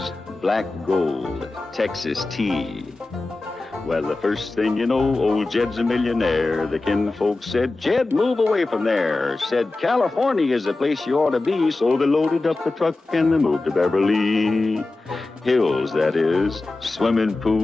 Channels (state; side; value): quieter; right; 3.2 dB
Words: black gold, Texas tea. Well, the first thing you know, old Jed's a millionaire. The kinfolk said, Jed, move away from there. Said, California is the place you ought to be. So they loaded up the truck and they moved to Beverly Hills, that is, swimming